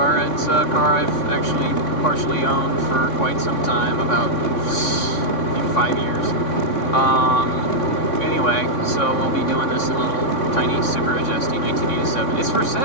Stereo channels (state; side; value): late; right; 3.5 ms